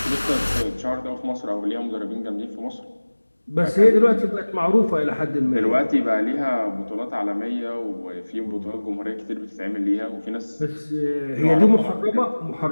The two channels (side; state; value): both; inverted; correlation -1.00